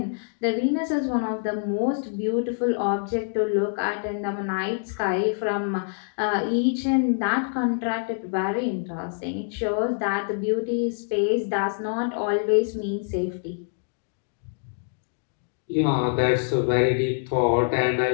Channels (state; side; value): silent; right; digital silence